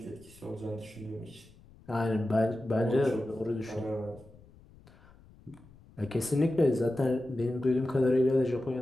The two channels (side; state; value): left; noise; rumble, 24 dB below the sound